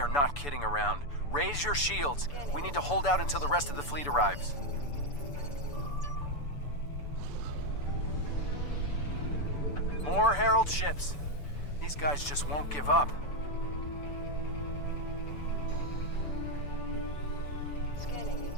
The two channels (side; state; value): right; late; 6.9 ms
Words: not kidding around. Raise your shields. We need to hold out until the rest of the fleet arrives. More Herald ships. These guys just won't give up. Scanning